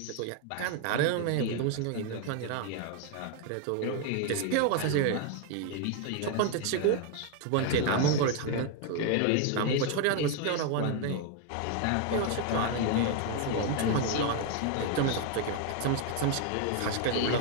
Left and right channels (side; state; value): both; different; correlation 0.01